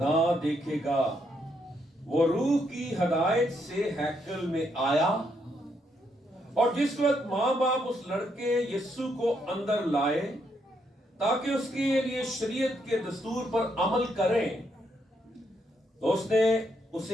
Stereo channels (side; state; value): both; normal; correlation 0.76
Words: دیکھے گا۔ وہ روح کی ہدایت سے ہیکل میں آیا، اور جس وقت ماں باپ اس لڑکے یسوع کو اندر لائے تاکہ اس کے لیے شریعت کے دستور پر عمل کریں، تو اس نے